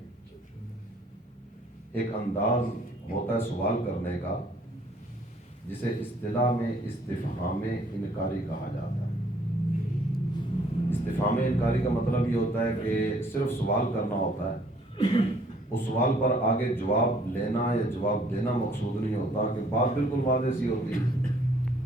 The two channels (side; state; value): both; normal; correlation 0.62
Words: ایک انداز ہوتا ہے سوال کرنے کا جسے اصطلاح میں استفہام انکاری کہا جاتا ہے۔ استفہام انکاری کا مطلب یہ ہوتا ہے کہ صرف سوال کرنا ہوتا ہے، اس سوال پر آگے جواب لینا یا جواب دینا مقصود نہیں ہوتا، کہ بات بالکل واضح سی ہوتی،